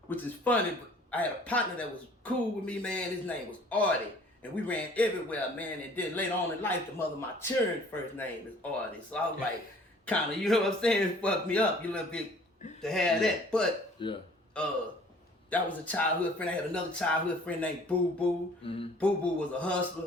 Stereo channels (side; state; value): both; normal; correlation 0.53